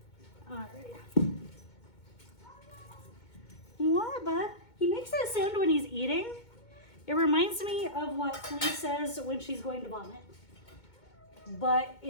All right. What, bud? He makes that sound when he's eating. It reminds me of what Flea says when she's going to vomit. But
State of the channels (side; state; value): right; late; 2.2 ms